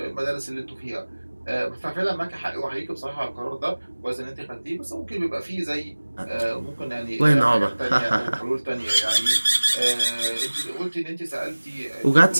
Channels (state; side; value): inverted; both; correlation -1.00